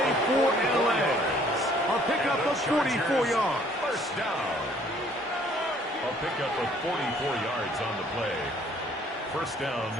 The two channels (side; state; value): both; normal; correlation 0.60